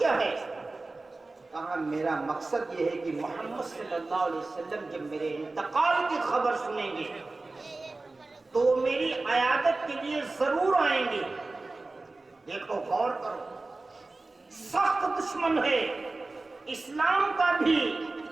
ہے؟ کہا میرا مقصد یہ ہے کہ محمد صلی اللہ علیہ وسلم جب میرے انتقال کی خبر سنیں گے تو میری عیادت کے لیے ضرور آئیں گے۔ دیکھو غور کرو، سخت دشمن ہے اسلام کا بھی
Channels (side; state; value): left; quieter; 3.3 dB